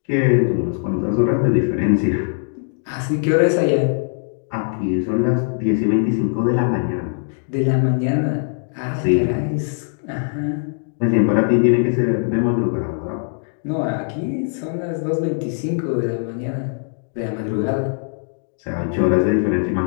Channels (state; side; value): silent; right; digital silence